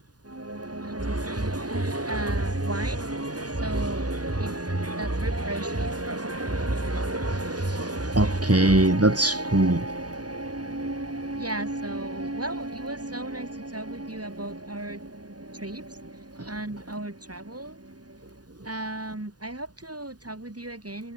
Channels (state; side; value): late; left; 0.68 ms